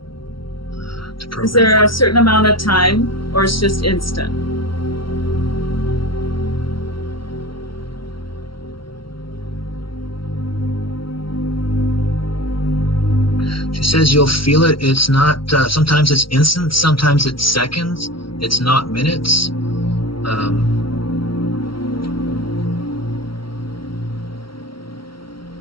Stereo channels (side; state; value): right; late; 0.74 ms